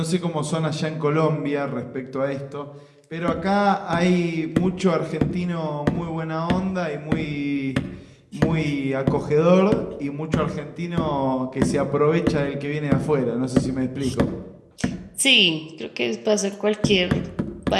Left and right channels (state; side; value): identical; both; correlation 1.00